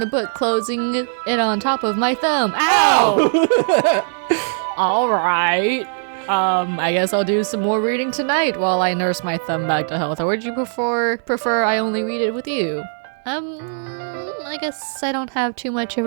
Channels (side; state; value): left; silent; digital silence